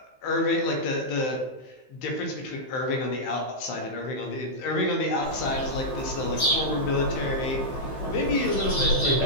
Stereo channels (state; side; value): late; right; 15 ms